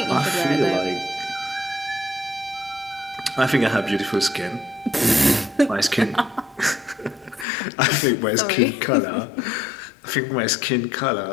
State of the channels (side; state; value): right; drops out; at 7.5 s